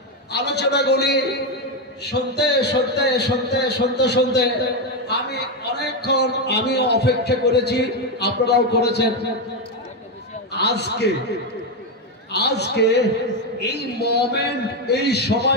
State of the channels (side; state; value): both; normal; correlation 0.07